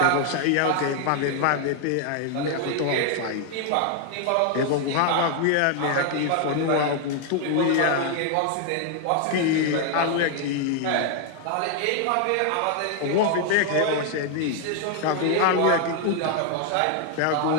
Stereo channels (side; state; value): both; different; correlation 0.00